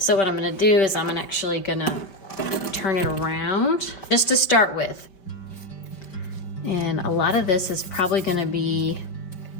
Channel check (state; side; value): late; right; 5.2 ms